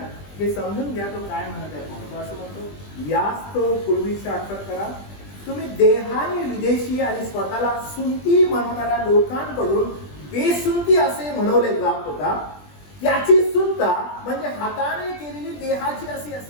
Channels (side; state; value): right; late; 20 ms